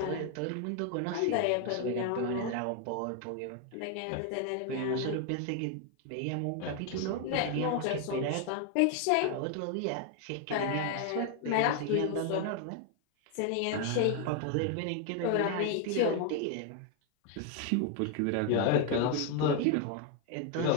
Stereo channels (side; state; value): both; different; correlation 0.01